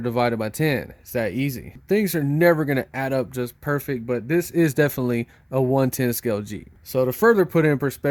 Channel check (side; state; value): both; identical; correlation 1.00